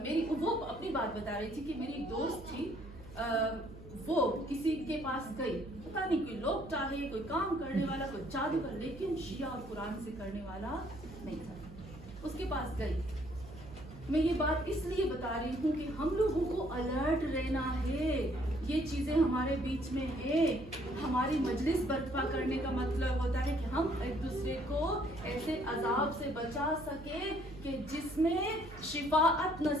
میری، وہ اپنی بات بتا رہی تھی کہ میری ایک دوست تھی، وہ کسی کے پاس گئی، پتہ نہیں کوئی لوگ چاہے، کوئی کام کرنے والا، کوئی جادوگر، لیکن شیعہ اور قرآن سے کرنے والا نہیں تھا. اس کے پاس گئی. میں یہ بات اس لیے بتا رہی ہوں کہ ہم لوگوں کو الرٹ رہنا ہے. یہ چیزیں ہمارے بیچ میں ہے. ہماری مجلس برپا کرنے کا مطلب ہوتا ہے کہ ہم ایک دوسرے کو ایسے عذاب سے بچا سکے کہ جس میں شفاعت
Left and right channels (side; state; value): right; noise; hum, 16 dB below the sound